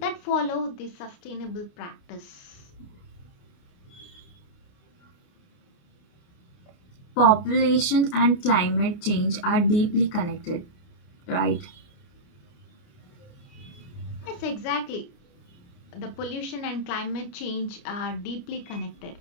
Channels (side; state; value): right; late; 29 ms